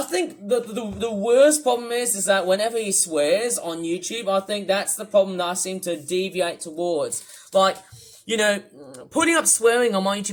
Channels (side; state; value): both; identical; correlation 1.00